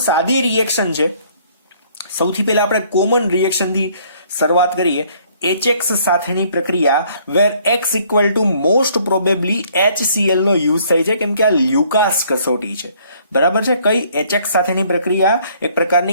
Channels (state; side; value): inverted; both; correlation -0.61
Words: સાદી રિએક્શન છે. સૌથી પહેલા આપણે કોમન રિએક્શનથી શરૂઆત કરીએ. HX સાથેની પ્રક્રિયા where X equal to most probably HCl નો યુઝ થાય છે, કેમ કે આ લ્યુકાસ કસોટી છે. બરાબર છે? કઈ HX સાથેની પ્રક્રિયા એક